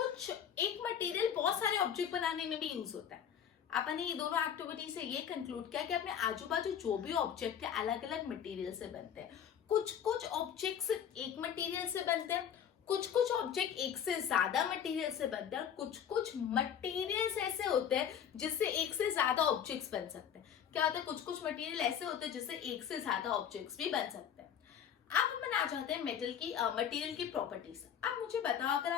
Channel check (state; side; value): quieter; right; 8.7 dB